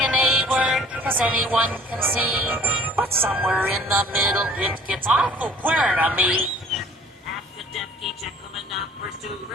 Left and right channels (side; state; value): both; normal; correlation 0.52